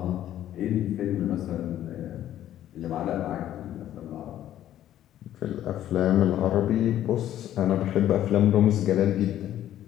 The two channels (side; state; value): right; quieter; 12.1 dB